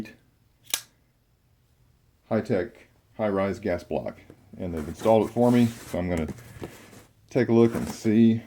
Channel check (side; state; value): both; identical; correlation 1.00